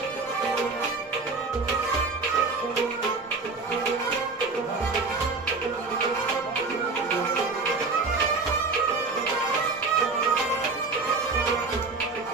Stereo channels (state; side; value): quieter; left; 4.0 dB